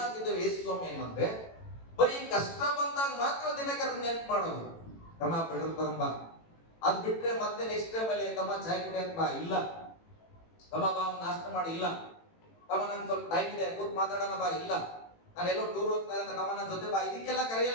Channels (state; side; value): late; right; 18 ms